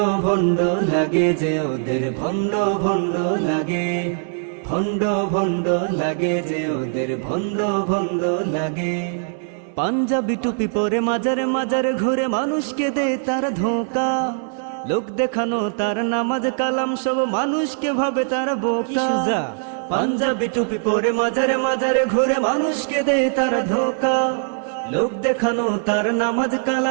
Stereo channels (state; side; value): silent; left; 64 dB below the other